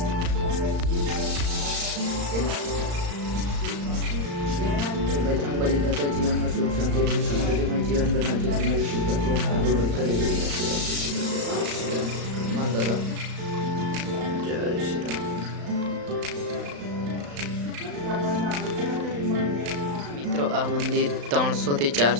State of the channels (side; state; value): left; late; 35 ms